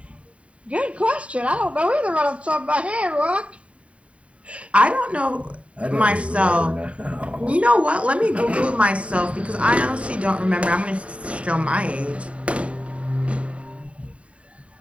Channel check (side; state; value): left; late; 0.064 ms